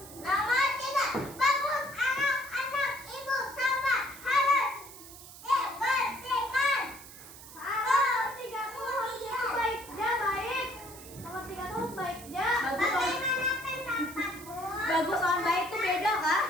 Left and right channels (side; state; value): right; noise; hiss, 16 dB below the sound